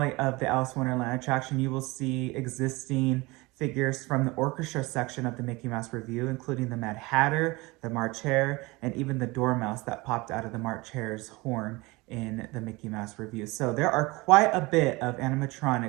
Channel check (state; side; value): quieter; left; 23.2 dB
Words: of the Alice in Wonderland attraction, you will see existing figures from the orchestra section of the Mickey Mouse Revue, including the Mad Hatter, the March Hare, and even the Dormouse that popped out of the March Hare's horn in the Mickey Mouse Revue. So there are quite a bit of